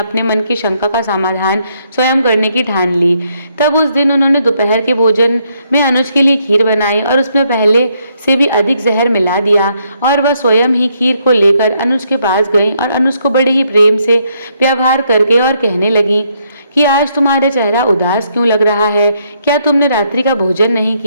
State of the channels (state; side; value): inverted; both; correlation -0.73